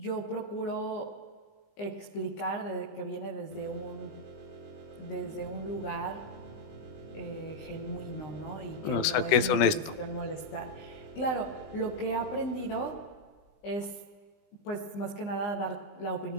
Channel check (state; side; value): late; right; 20 ms